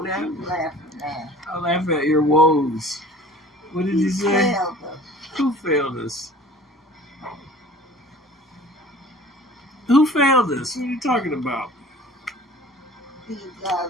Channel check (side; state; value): both; normal; correlation 0.46